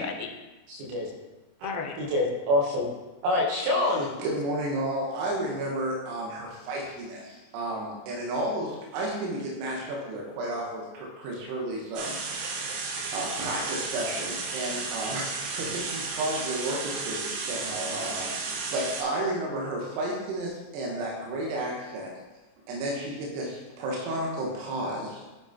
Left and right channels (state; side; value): late; left; 28 ms